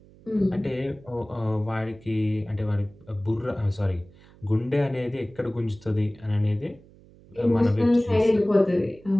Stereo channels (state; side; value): noise; right; hum, 25 dB below the sound